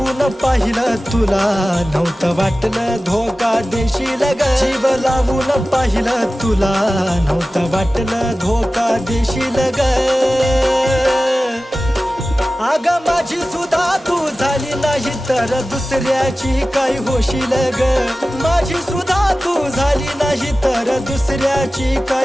पाहिलं तुला नव्हतं वाटलं धोका देशील ग जीव लावून पाहिलं तुला नव्हतं वाटलं धोका देशील ग अग माझी सुद्धा तू झाली नाही तर दुसऱ्याची काय होशील ग माझी सुद्धा तू झाली नाही तर दुसऱ्याची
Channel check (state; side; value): normal; both; correlation 0.96